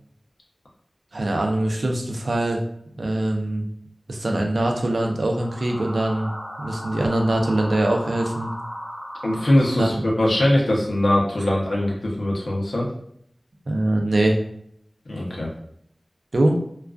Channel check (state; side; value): normal; both; correlation 0.97